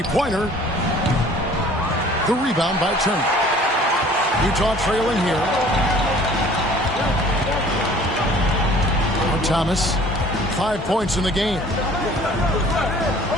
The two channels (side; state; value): both; normal; correlation 0.51